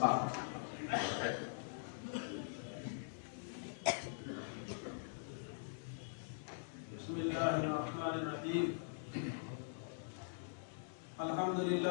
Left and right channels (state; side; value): silent; right; digital silence